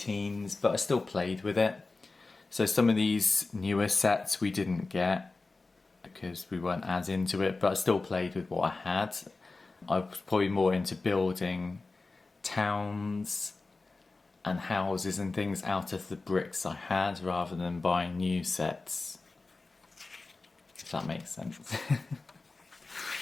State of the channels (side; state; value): right; quieter; 3.6 dB